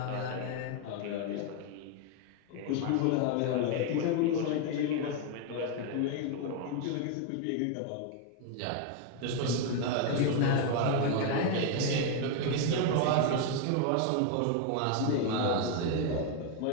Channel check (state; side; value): different; both; correlation 0.01